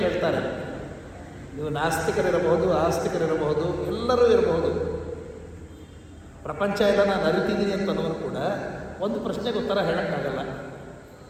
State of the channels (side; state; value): both; identical; correlation 1.00